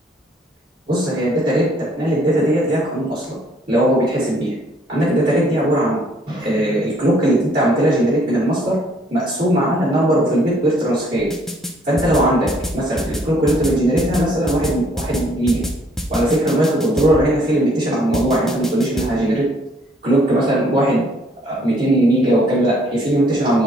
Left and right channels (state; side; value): normal; both; correlation 0.63